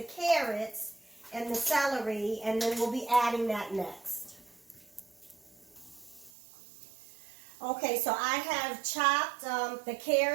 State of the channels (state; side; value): drops out; left; at 6.3 s